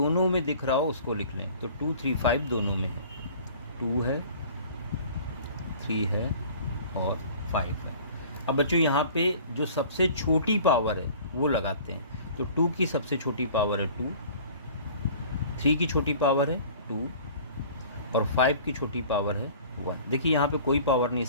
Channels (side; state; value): both; inverted; correlation -0.47